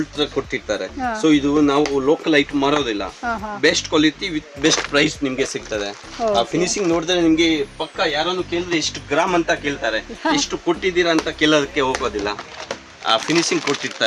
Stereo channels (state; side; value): identical; both; correlation 1.00